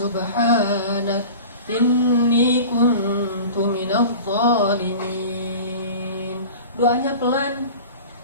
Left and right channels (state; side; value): inverted; both; correlation -0.38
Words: inni kuntu minadh dhalimin. Doanya pelan.